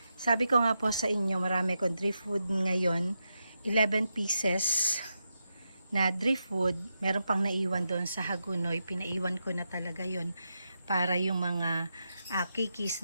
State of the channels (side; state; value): both; inverted; correlation -0.87